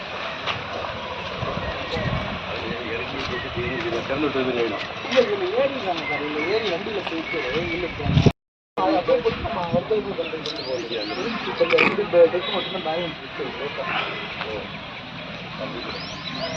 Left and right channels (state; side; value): identical; both; correlation 1.00